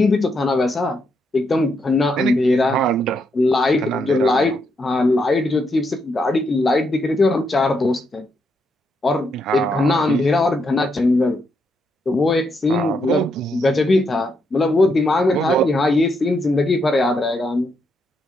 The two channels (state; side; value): normal; both; correlation 0.79